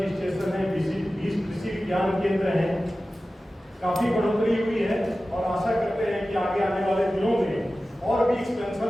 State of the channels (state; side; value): normal; both; correlation 0.95